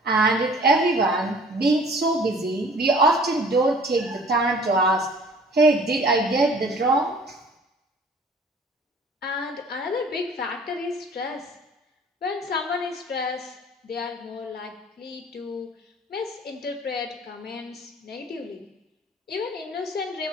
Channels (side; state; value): both; normal; correlation 0.51